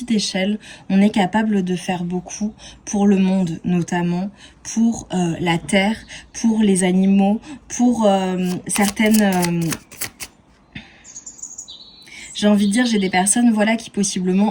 échelle, on est capable de faire beaucoup pour le monde notamment, pour la terre, pour les animaux, pour certaines... j'ai envie de dire, j'ai des personnes voilà, qui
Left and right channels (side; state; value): both; identical; correlation 1.00